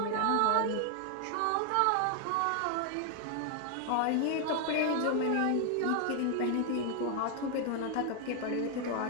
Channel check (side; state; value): both; different; correlation 0.00